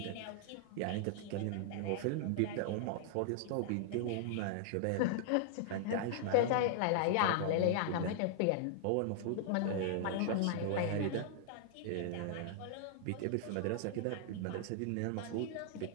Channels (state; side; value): different; both; correlation -0.01